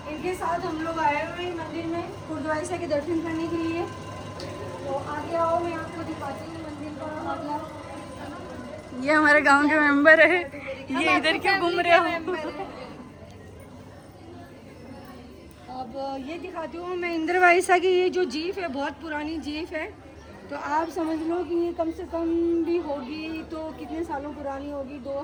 इनके साथ हम लोग आए हुए हैं मंदिर में गुरुद्वारा के दर्शन करने के लिए। तो आगे आओ, मैं आपको दिखाती हूँ मंदिर का मतलब। ये हमारे गांव के मेंबर है, ये इधर क्यों घूम रहे हो? अब ये दिखाती हूँ मैं इंद्रवाइसा की। ये जो जीप है बहुत पुरानी जीप है, तो आप समझ लो कि ये कम से कम भी होगी तो कितने सालों पुरानी होगी,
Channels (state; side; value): identical; both; correlation 1.00